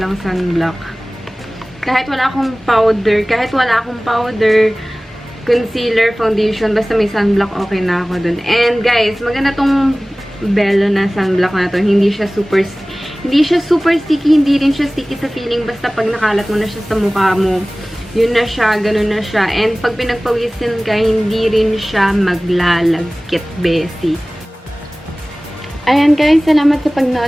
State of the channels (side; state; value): both; normal; correlation 0.98